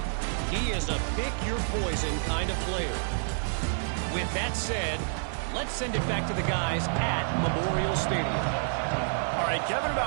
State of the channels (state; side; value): silent; left; digital silence